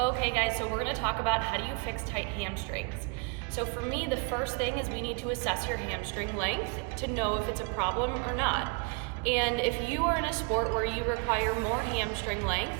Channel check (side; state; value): left; quieter; 34.8 dB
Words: guys, so we're gonna talk about how do you fix tight hamstrings. So for me, the first thing is we need to assess your hamstring length to know if it's a problem or not. And if you are in a sport where you require more hamstring length,